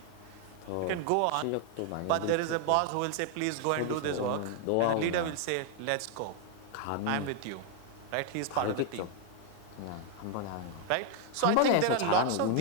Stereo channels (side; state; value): both; different; correlation 0.00